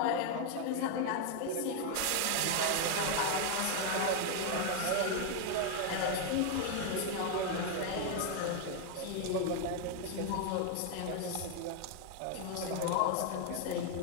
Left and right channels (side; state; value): both; different; correlation 0.01